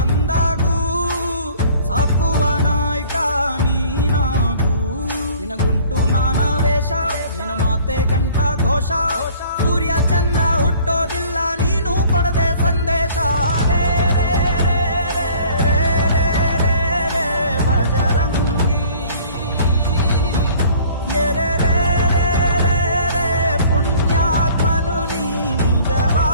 ಸಾಕುವ ನಾಯಕ ನೀನಾಗೂ, ನಿನಗುಂಟು ನಾನಾ ವೇಷ, ನಿನ್ನ ಮಾತೆ ಗಂಟ ಘೋಷ. ಸೂರ್ಯ ಚಂದ್ರ ಹುಟ್ಟೋದಿಲ್ಲ ನೀನು ಕೊಡದೆ ಸಂದೇಶ. ರೇ ರೇ ರೇ ರೇ ರೇ ರೇ ರೇ ರೇ ಭಜರಂಗಿ, ರೇ ರೇ ರೇ ರೇ ರೇ ಪುಣ್ಯಾತ್ಮನು ನೀ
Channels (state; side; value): inverted; both; correlation -0.51